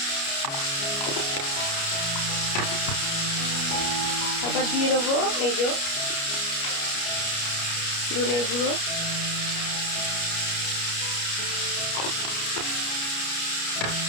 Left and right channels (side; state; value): right; late; 29 ms